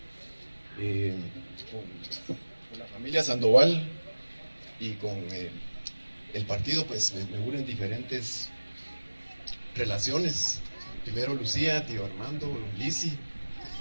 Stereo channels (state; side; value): inverted; both; correlation -1.00